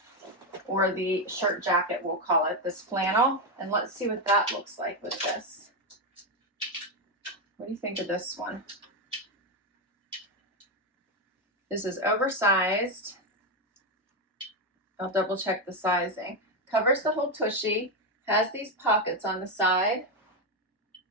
or the shirt jacket, we'll call it, this flannel. And let's see what that looks like with this. What do you think of this one? This is oversized. I'll double check the sizing. Covers the whole tushy, has these pockets on the side.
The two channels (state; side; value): normal; both; correlation 0.08